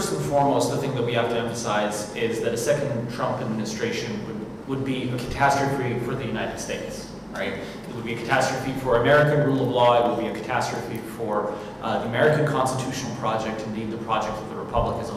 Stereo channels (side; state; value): both; identical; correlation 1.00